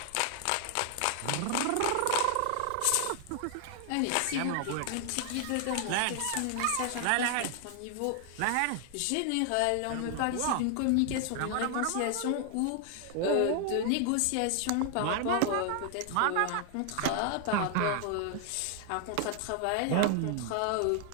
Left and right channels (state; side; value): different; both; correlation 0.00